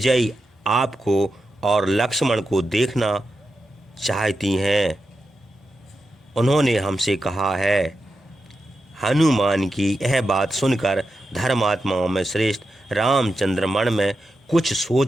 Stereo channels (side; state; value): both; normal; correlation 0.88